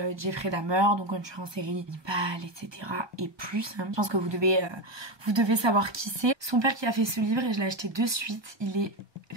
Jeffrey Dahmer, donc un tueur en série, cannibale, etc. et plus. Hein. Je pense que vous devez savoir qui c'est. Son père qui a fait ce livre et je l'ai acheté de suite. Il est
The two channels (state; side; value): late; left; 1.2 ms